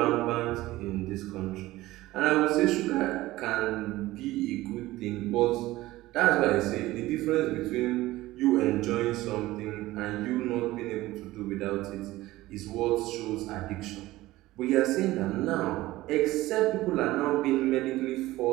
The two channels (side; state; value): left; quieter; 17.5 dB